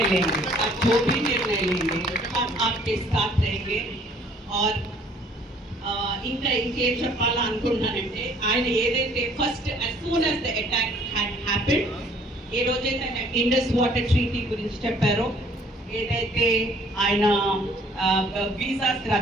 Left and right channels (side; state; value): both; normal; correlation 0.58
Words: लेंगे हम आपके साथ रहेंगे और ఇంకా ఇంకేం చెప్పాలనుకుంటున్నానంటే ఆయన ఏదైతే first as soon as the attack had happened ఏ రోజైతే ఆయన ఇండస్ వాటర్ ట్రీటీ గురించి చెప్పారో ఏదైతే ఆయన వీసాస్